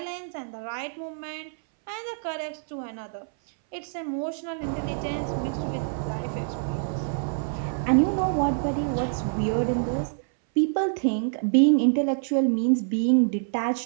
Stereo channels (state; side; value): silent; left; 61 dB below the other